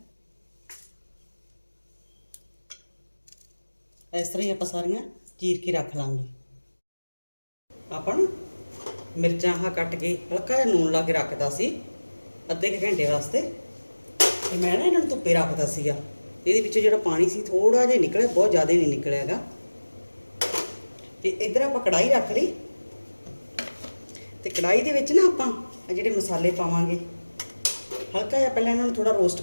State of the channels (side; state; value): both; inverted; correlation -1.00